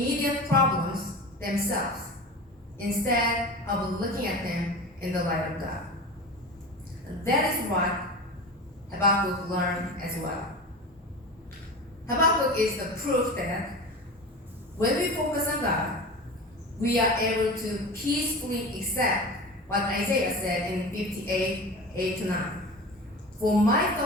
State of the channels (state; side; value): normal; both; correlation 0.31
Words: problems themselves, instead of looking at them in the light of God." That is what Habakkuk learned as well. Habakkuk is the proof that when we focus on God, we are able to peacefully accept what Isaiah said in 58, 8-9. "For my